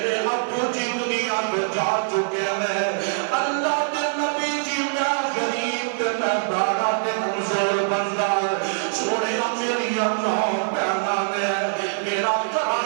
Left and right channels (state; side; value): silent; left; digital silence